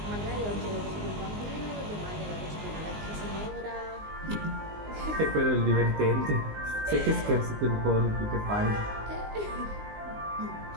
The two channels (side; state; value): left; late; 19 ms